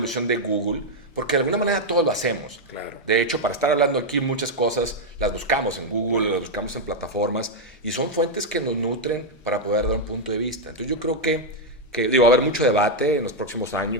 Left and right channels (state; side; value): normal; both; correlation 0.00